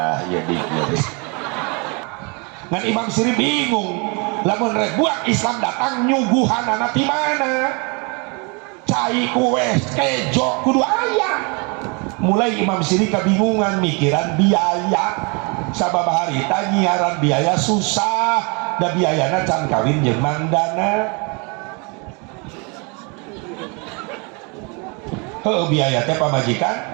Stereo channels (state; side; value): quieter; left; 32.0 dB